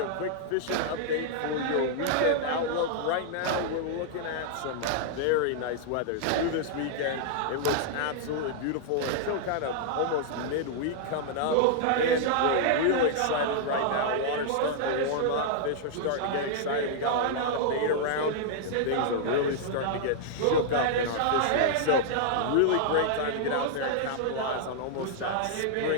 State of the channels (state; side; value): different; both; correlation -0.01